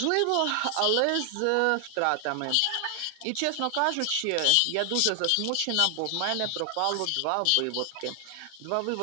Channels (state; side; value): different; both; correlation 0.00